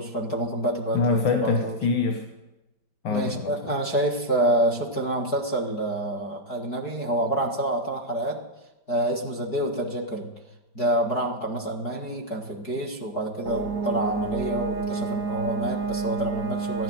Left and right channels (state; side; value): late; right; 4.7 ms